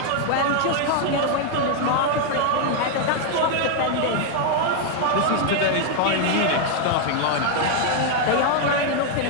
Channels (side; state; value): both; different; correlation 0.00